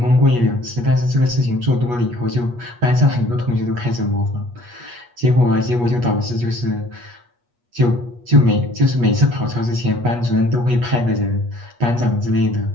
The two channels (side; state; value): left; late; 8.3 ms